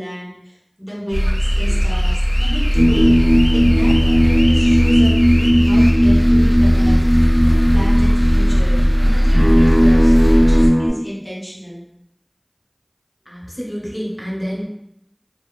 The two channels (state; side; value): identical; both; correlation 1.00